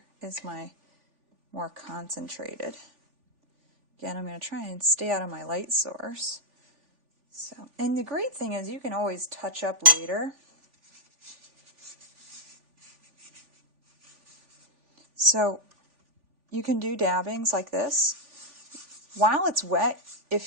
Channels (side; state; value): left; late; 3.4 ms